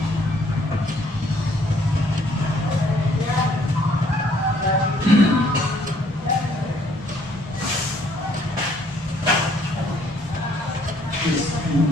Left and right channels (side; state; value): both; normal; correlation 0.64